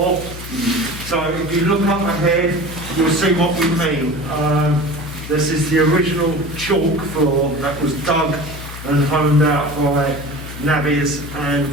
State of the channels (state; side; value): noise; left; hum, 12 dB below the sound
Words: So if you look up ahead, you'll see what we mean. This is the original chalk floor that was dug and honed out by navvies and